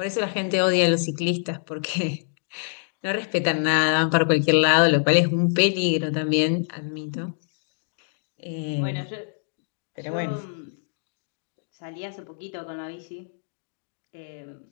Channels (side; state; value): right; silent; digital silence